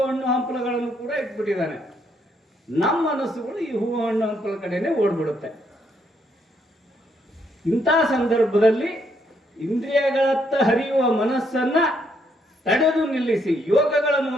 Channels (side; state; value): both; normal; correlation 0.73